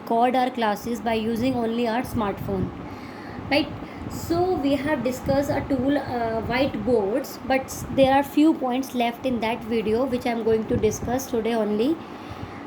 our classes by using only our smartphone. Right? So we have discussed a tool whiteboards, but there are few points left in that video which I am going to discuss today only.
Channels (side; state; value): both; identical; correlation 1.00